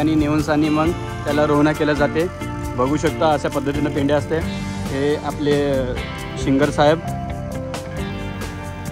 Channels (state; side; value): identical; both; correlation 1.00